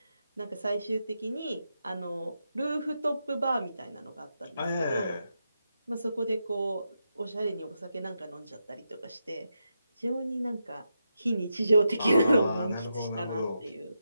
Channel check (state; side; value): inverted; both; correlation -0.86